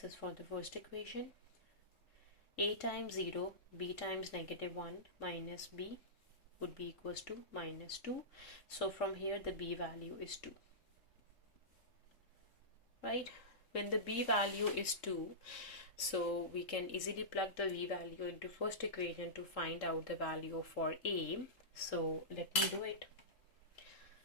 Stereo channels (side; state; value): right; late; 3.7 ms